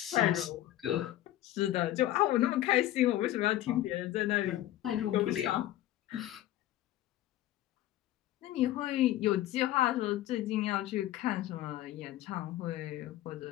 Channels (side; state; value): right; quieter; 14.2 dB